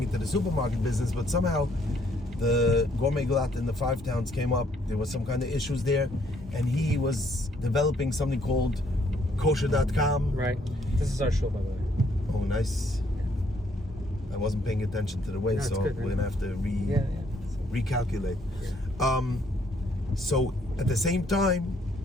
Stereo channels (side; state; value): both; normal; correlation 0.68